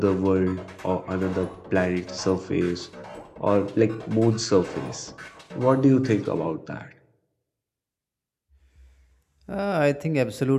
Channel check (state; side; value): identical; both; correlation 1.00